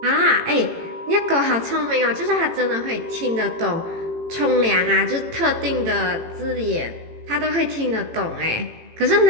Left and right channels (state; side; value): late; left; 18 ms